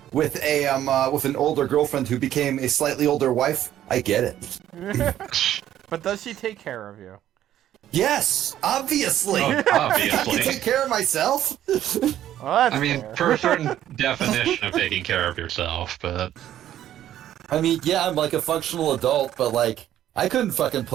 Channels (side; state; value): left; quieter; 11.9 dB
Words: with an older girlfriend who became a slightly older wife, I get it. But does she take care of you? Yes, obviously. Oh, I can obviously. take care of myself. Well, that's I mean, fair. for a certain definition of taking care of yourself, but I mean, yeah, I'm like a functional adult, but like I couldn't fucking